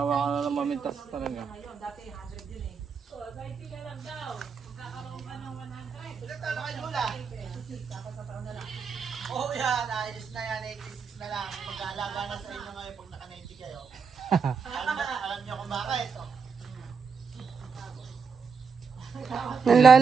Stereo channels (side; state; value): left; quieter; 5.7 dB